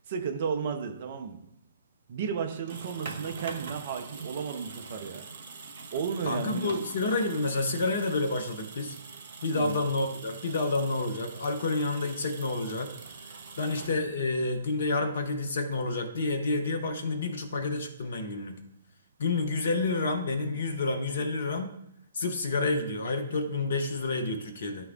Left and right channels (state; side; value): inverted; both; correlation -0.61